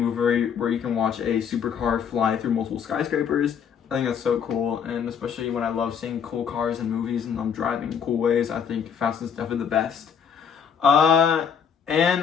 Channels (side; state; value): right; quieter; 7.4 dB